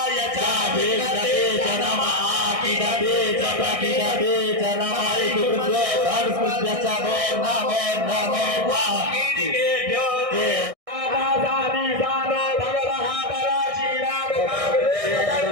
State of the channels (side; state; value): left; late; 1.6 ms